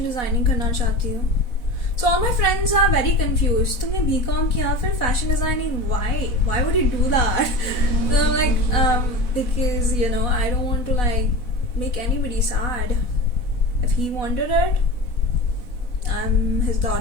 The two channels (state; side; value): late; right; 4.1 ms